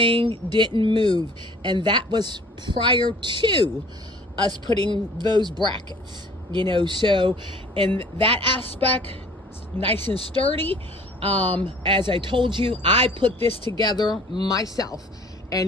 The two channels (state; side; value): normal; both; correlation 0.51